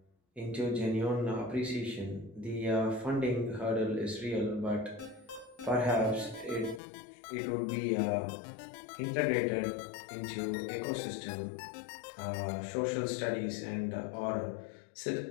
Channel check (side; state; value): right; drops out; at 6.8 s